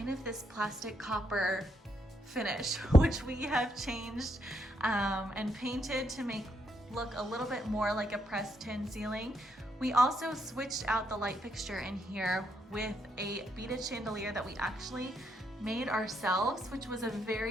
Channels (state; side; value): normal; both; correlation 0.76